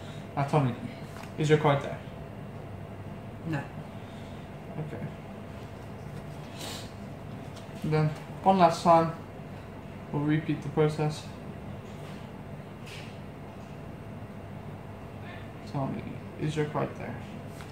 Now tell me, is your card there? No. Okay. And then, one last time, we'll repeat the process. Tell me, is your card there?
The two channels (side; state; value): both; identical; correlation 1.00